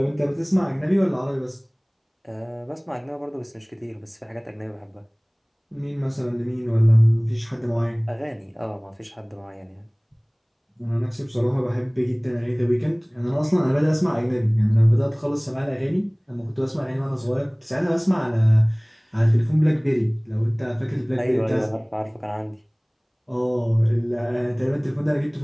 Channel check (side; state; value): both; identical; correlation 1.00